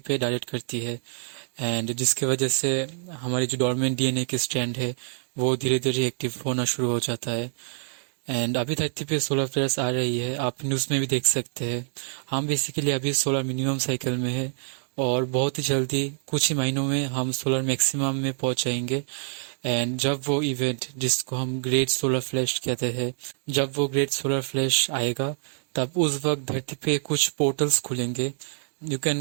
डायरेक्ट करती है। एंड जिसकी वजह से हमारी जो डॉर्मेंट डीएनए की स्ट्रैंड है, वो धीरे धीरे एक्टिव होना शुरू हो जाता है। एंड अभी धरती पे सोलर फ्लेयर्स आ रही है, आप न्यूज़ में भी देख सकते हैं। हम बेसिकली अभी सोलर मिनिमम साइकिल में है, और बहुत ही जल्दी कुछ ही महीनों में हम सोलर मैक्सिमम में पहुंच जाएंगे। एंड जब वो इवेंट, जिसको हम ग्रेट सोलर फ्लैश कहते हैं, जब वो ग्रेट सोलर फ्लैश आएगा, तब उस वक्त धरती पे कुछ पोर्टल्स खुलेंगे। You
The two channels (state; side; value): silent; left; digital silence